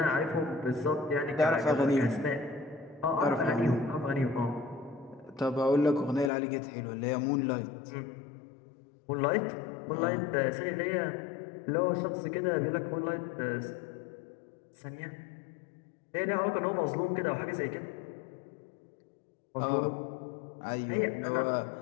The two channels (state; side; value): drops out; right; at 6.3 s